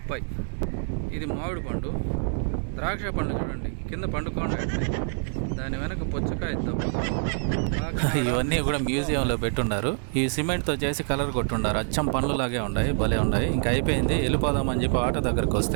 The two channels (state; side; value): silent; left; digital silence